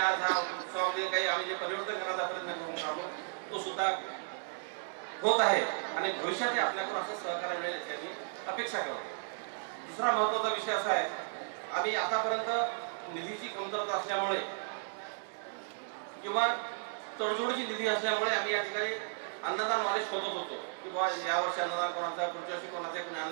हा उत्सवामध्ये काही आम्ही जे परिवर्तन करण्याचा प्रयत्न करून राहिलो तो सुद्धा होत आहे आणि भविष्यात आपल्याकडून असं सहकार्य मिळेल याची आम्ही अपेक्षा करतो. दुसरा महत्त्वाचा विषय असा आहे, आम्ही आतापर्यंत निधीची कमतरता असल्यामुळे किंवा तडजोडीची निधी असल्यामुळे आम्ही या ठिकाणी अन्नदानवाले शोधत होतो की बाबा यावर्षी अन्नदान कोणाचा, पुढच्या वर्षी कोणाचा, कोणी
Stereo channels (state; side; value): silent; left; digital silence